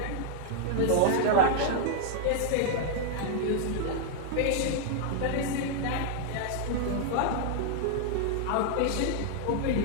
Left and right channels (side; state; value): both; different; correlation -0.01